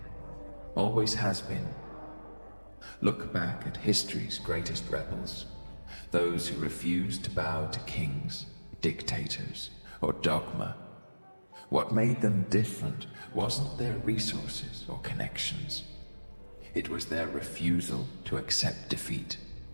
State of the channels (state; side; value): inverted; both; correlation -1.00